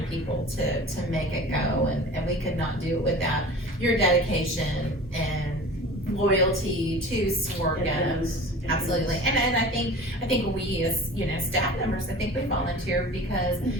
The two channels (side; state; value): both; normal; correlation 0.39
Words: people to make it go, and we could not do it without your dedication and loyalty to Sworga. It is. It Absolutely, is. and I think we as, you know, staff members, I think we volunteer because